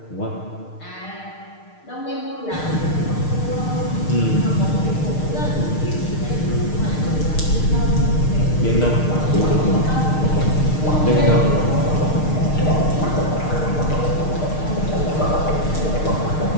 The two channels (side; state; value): right; late; 6.5 ms